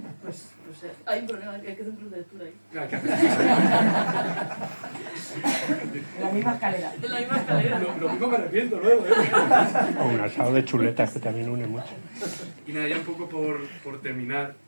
pues, no sé, hay un problema, hay que hacer un club de lectura ahí. Hay que hacer- En la misma escalera. En la misma escalera. Lo mismo me arrepiento luego, ¿eh? O un asado de chuletas que también une mucho. Y nada, ya un poco por terminar,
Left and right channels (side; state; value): both; inverted; correlation -1.00